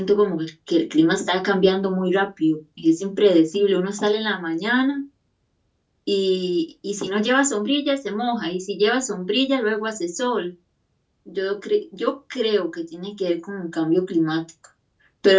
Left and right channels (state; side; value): identical; both; correlation 1.00